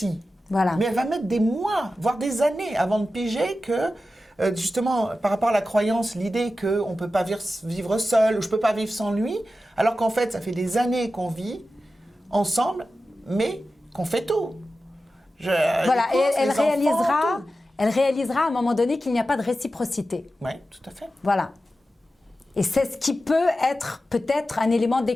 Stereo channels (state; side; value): normal; both; correlation 0.93